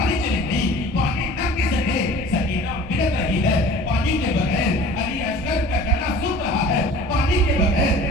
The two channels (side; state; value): both; normal; correlation 0.45